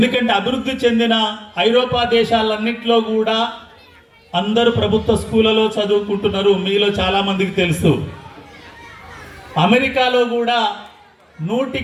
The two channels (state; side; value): identical; both; correlation 1.00